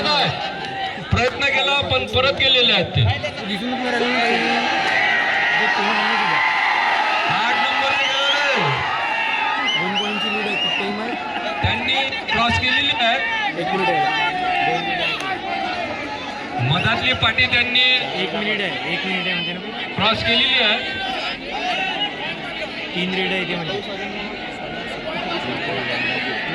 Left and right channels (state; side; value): identical; both; correlation 1.00